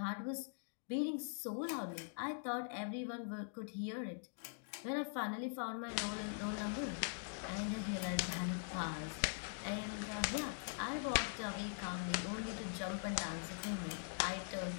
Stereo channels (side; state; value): right; silent; digital silence